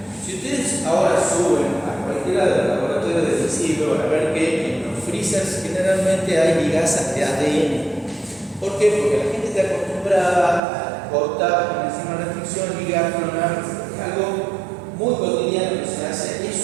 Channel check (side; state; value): left; drops out; at 10.6 s